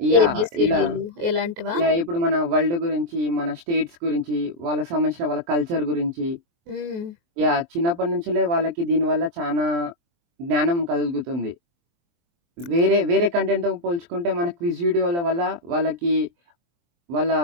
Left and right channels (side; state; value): left; late; 23 ms